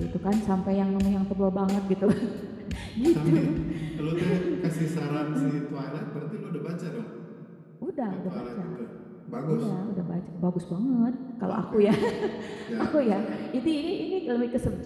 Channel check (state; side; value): identical; both; correlation 1.00